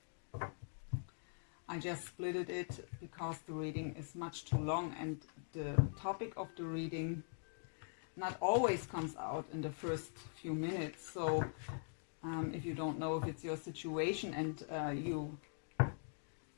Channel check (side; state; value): right; silent; digital silence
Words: I just splitted it because the reading is much too long and the topic of the reading not always comes out in the first few minutes. So if you don't know if it's your situation and you